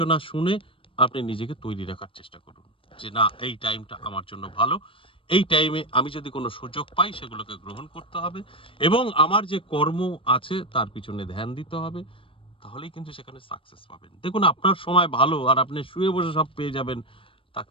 শুনে আপনি নিজেকে তৈরি রাখার চেষ্টা করুন যে না, এই টাইমটা আমার জন্য ভালো। এই টাইমে আমি যদি কোনো সুযোগ পাই সেগুলোকে গ্রহণ করতে হবে এবং আমার যে কর্ম আছে তার পিছনে ধ্যান দিতে হবে। তাহলেই কিন্তু সেখানে সাকসেস পাবেন। দেখুন, আপনার সময় ভালো আর আপনি শুয়ে বসে সব পেয়ে যাবেন, তা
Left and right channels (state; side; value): late; right; 0.26 ms